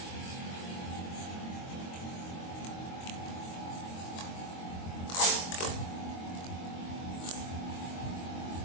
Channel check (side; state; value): right; late; 23 ms